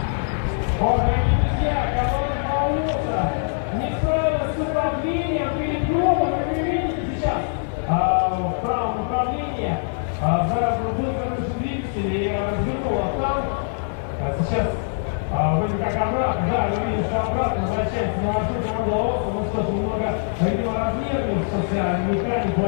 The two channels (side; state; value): right; silent; digital silence